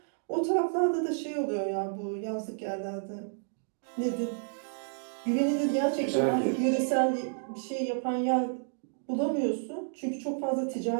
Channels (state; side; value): silent; left; digital silence